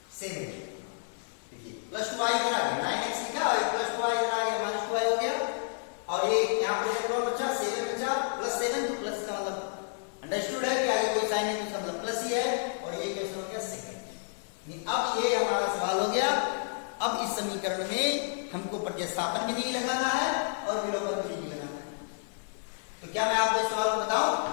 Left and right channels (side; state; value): right; silent; digital silence